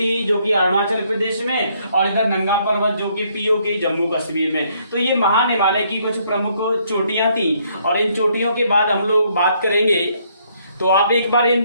जो कि अरुणाचल प्रदेश में, और इधर नंगा पर्वत जो कि पीओके जम्मू कश्मीर में। तो ये महान हिमालय की कुछ प्रमुख चोटियां थी, और इन चोटियों के बाद हम लोग बात करेंगे। तो आप एक बार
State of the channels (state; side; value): inverted; both; correlation -0.69